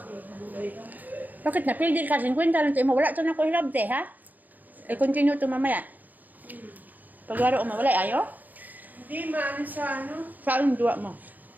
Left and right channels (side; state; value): left; late; 0.083 ms